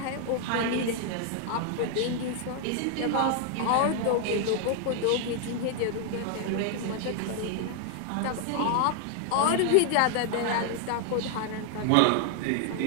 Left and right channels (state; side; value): different; both; correlation 0.00